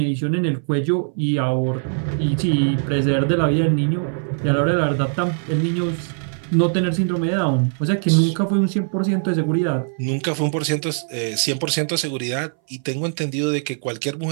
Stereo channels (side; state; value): left; silent; 61 dB below the other